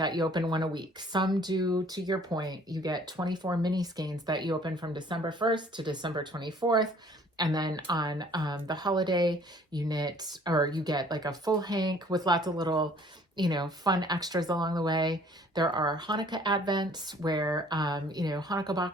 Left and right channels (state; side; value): normal; both; correlation 0.56